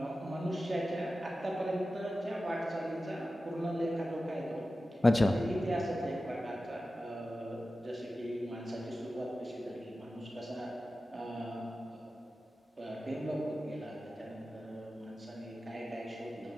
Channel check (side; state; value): both; normal; correlation 0.94